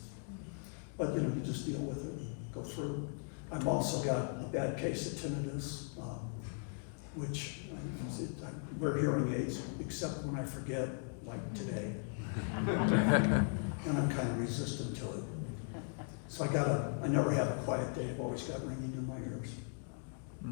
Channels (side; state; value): right; silent; 52 dB below the other